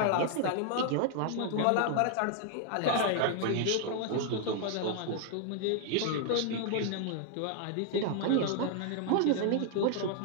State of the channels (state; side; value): different; both; correlation 0.00